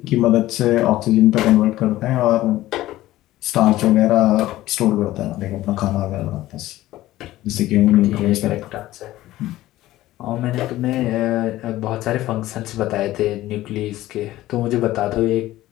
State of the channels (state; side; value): quieter; right; 15.8 dB